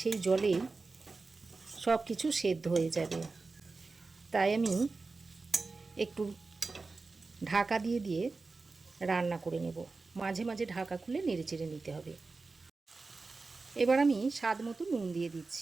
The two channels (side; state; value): left; quieter; 3.9 dB